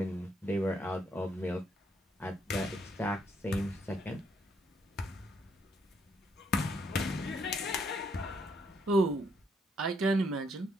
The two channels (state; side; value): normal; both; correlation 0.73